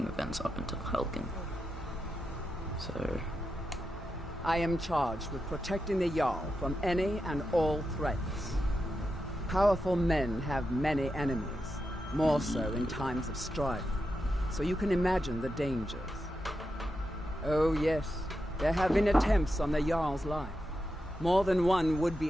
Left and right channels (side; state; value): both; normal; correlation 0.87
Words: events up until Helgen. So... I am charged with protecting the Jarl from any and all threats. Powerful men have many enemies, more so in times of strife, so you can imagine the dangers. Oh yes, there have been attempts on the Jarl's life. More than one